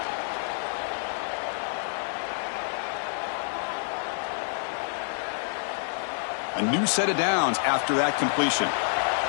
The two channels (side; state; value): right; silent; 59 dB below the other